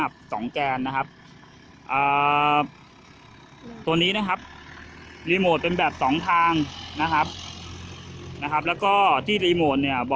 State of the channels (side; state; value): both; identical; correlation 1.00